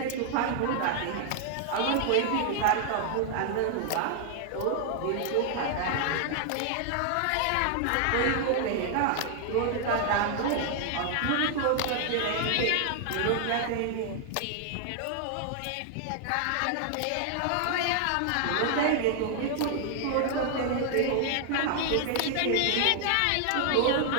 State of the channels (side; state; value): both; different; correlation 0.00